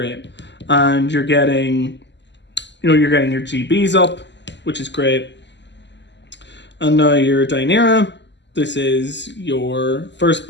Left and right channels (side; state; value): right; late; 0.51 ms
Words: And you're getting, you know, you're getting your GBs up, which is great. And now your Dynera, this is your first